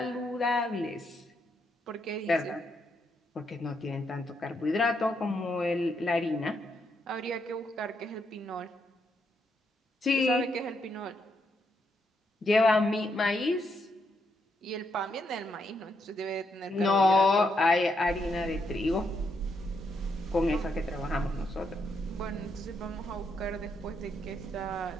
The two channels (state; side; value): normal; both; correlation 0.78